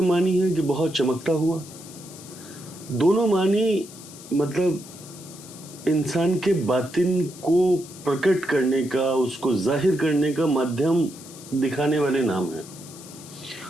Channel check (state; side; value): noise; left; hiss, 17 dB below the sound